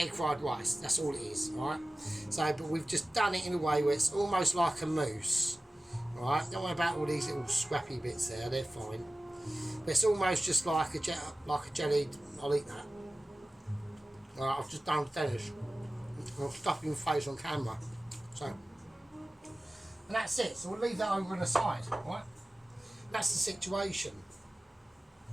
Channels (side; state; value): both; normal; correlation 0.96